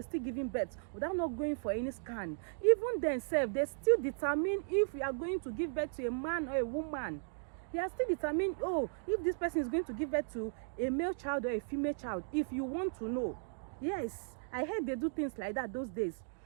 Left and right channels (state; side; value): silent; left; digital silence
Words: still giving birth without not going for any scan. Even themselves, they still determine if you are going to give birth to a man or a woman. They are still determining, oh, if this person is going to give birth to a male child or a female child. If you want to know, yes, I heard they do things like that those days.